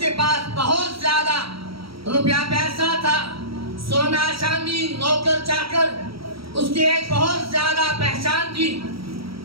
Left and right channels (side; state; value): left; late; 0.75 ms